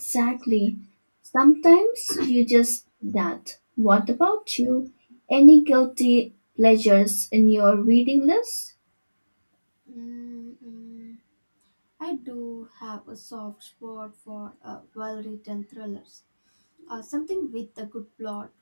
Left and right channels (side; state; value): both; inverted; correlation -1.00